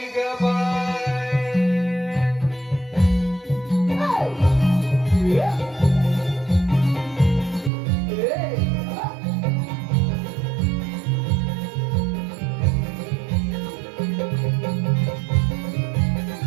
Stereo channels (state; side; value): drops out; left; at 7.7 s